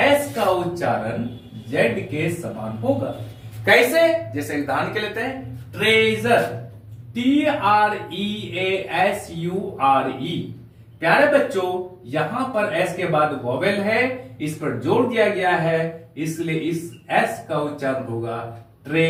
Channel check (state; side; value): identical; both; correlation 1.00